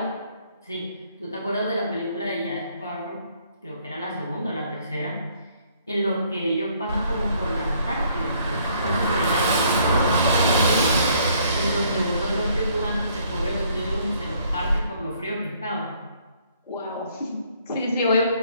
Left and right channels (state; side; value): inverted; both; correlation -0.65